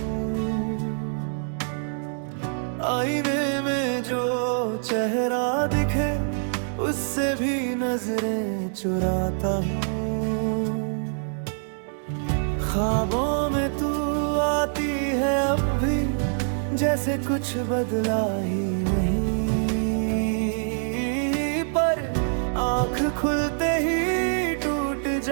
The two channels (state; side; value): silent; left; digital silence